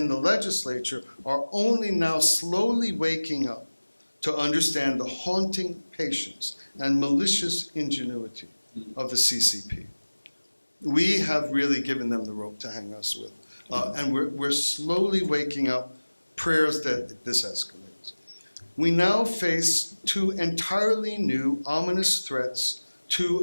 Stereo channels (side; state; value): both; inverted; correlation -1.00